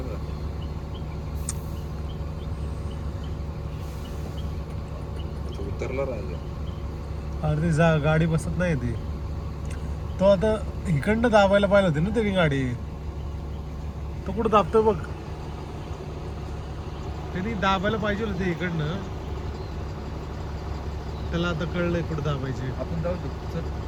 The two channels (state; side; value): identical; both; correlation 1.00